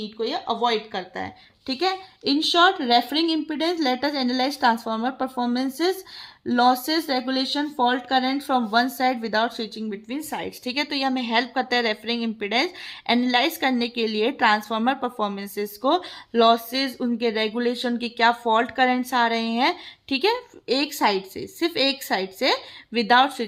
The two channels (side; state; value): both; identical; correlation 1.00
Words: को ये अवॉइड करता है. ठीक है. In short, referring impedance, let us analyse transformer performances, losses, regulation, fault current from one side without switching between sides. ठीक है. तो ये हमें हेल्प करता है रेफरिंग इम्पीडेंस एनालाइज करने के लिए, ट्रांसफार्मर परफॉर्मेंसेस को, लॉसेस, उनके रेगुलेशन की क्या फॉल्ट करंट्स आ रहे हैं. ठीक है. एक साइड से, सिर्फ एक साइड से, विदाउट